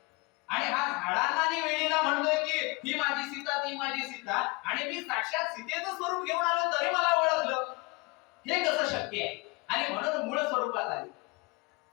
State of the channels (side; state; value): right; quieter; 26.1 dB